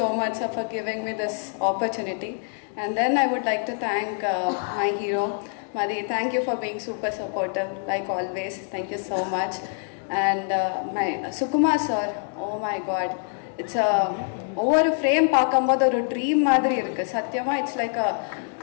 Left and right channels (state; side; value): silent; right; 56 dB below the other